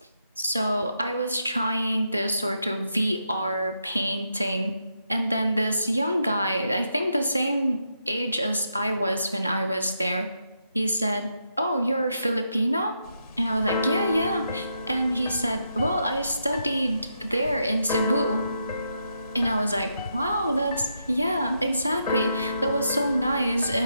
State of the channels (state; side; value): inverted; both; correlation -0.81